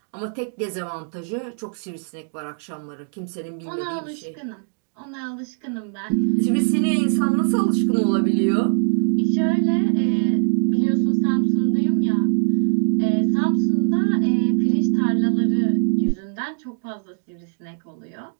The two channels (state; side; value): silent; left; digital silence